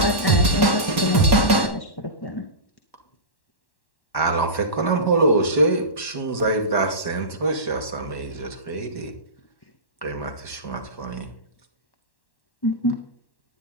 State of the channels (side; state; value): right; late; 1.1 ms